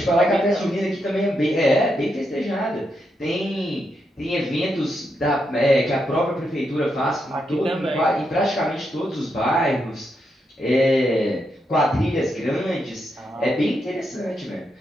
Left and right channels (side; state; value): both; normal; correlation 0.82